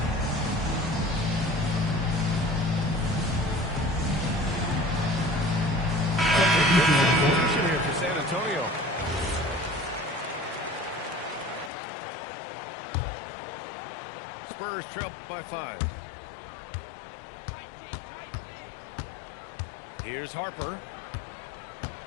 Substitution here for San Antonio. Spurs trail by 5. Here's Harper.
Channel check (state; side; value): drops out; right; at 11.7 s